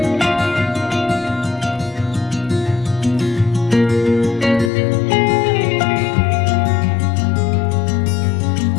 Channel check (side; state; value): right; drops out; at 4.7 s